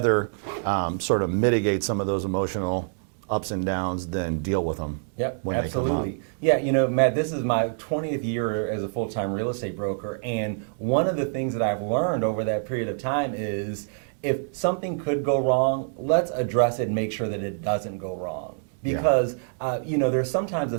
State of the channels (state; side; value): silent; left; digital silence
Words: sort of mitigate some of those emotional ups and downs than deal with them. Yep, absolutely. Yeah, you know, Matt, this is my 20th year as a full-time real estate broker, and one of the things that I've learned over that period of time is if something could go wrong, let's address it and make sure that it doesn't go wrong. Because, you know, there's sometimes a